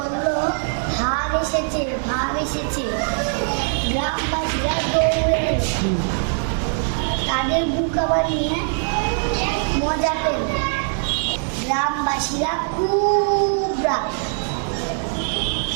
ভাগ এসেছে, ভাগ এসেছে। গ্রামবাসীরা দৌড়ে তাদের বুকা বানিয়ে মজা পেল। গ্রামবাসীরা খুব রাগ।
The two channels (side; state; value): left; silent; 57 dB below the other